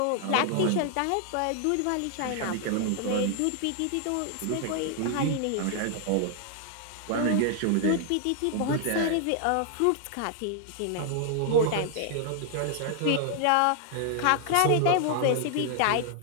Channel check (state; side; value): different; both; correlation 0.00